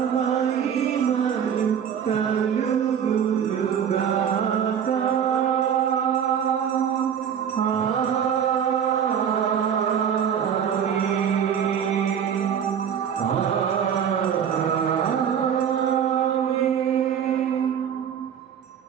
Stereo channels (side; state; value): left; quieter; 8.3 dB